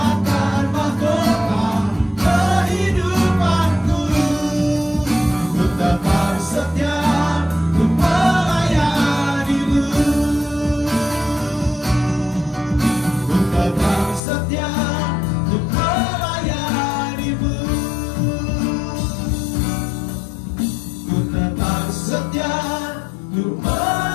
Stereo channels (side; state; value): right; drops out; at 14.2 s